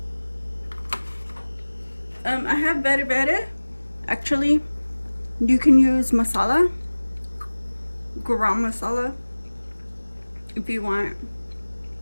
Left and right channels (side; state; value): both; inverted; correlation -1.00